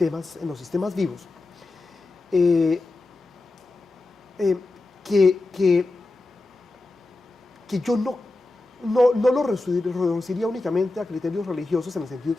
vivos, que yo no lo reduciría únicamente a criterios religiosos en el sentido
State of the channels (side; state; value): right; quieter; 3.1 dB